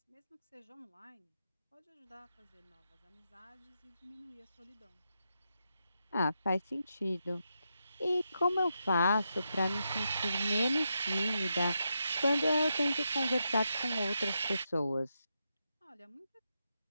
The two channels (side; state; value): both; inverted; correlation -0.85